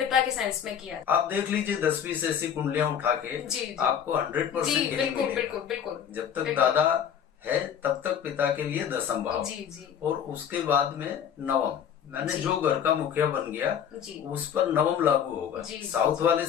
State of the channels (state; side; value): quieter; right; 8.5 dB